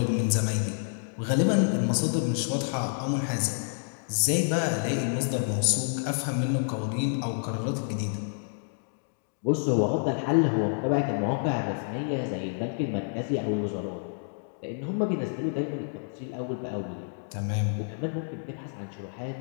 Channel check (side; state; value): right; silent; digital silence